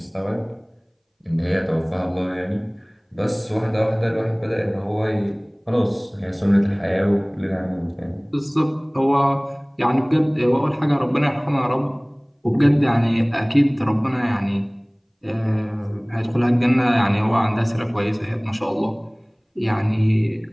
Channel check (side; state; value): both; identical; correlation 1.00